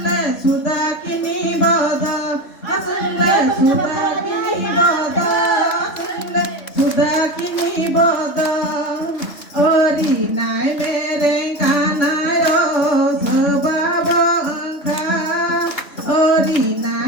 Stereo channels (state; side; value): late; right; 3.4 ms